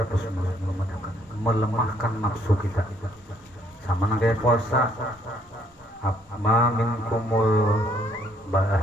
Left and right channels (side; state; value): both; normal; correlation 0.67